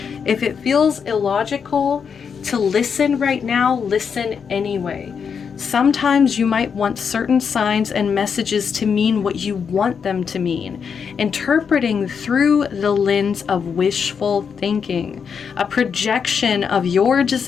If it feels illogical to listen right now, listen anyway. Sometimes you might want certain signs and messages to mean what you want them to mean, interpreting through the lens of wishful thinking, a projection of your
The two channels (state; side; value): quieter; right; 6.5 dB